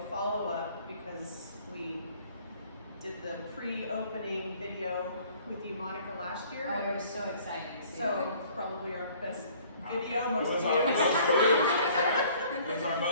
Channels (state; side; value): inverted; both; correlation -0.55